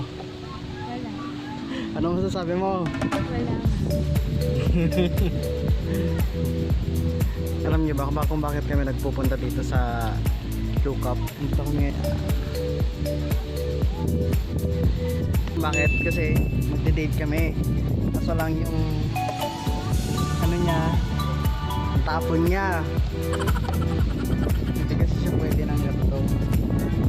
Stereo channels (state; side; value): identical; both; correlation 1.00